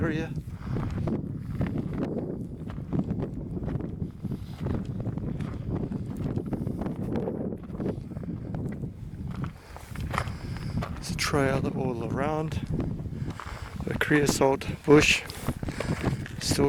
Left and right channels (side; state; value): both; identical; correlation 1.00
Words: There's a trail all around. The creosote bush